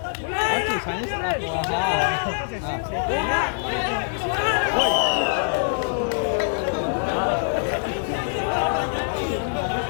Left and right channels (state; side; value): silent; right; digital silence